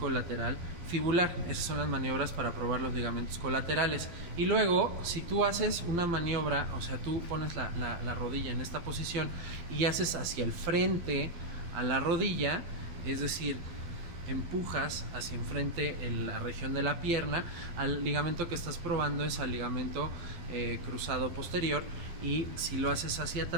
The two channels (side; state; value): left; late; 11 ms